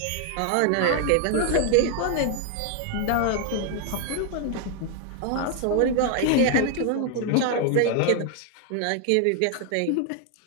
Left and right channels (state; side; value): different; both; correlation 0.00